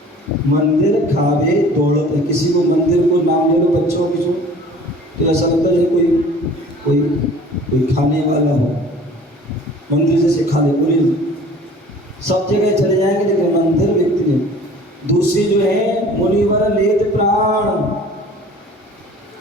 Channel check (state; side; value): normal; both; correlation 0.47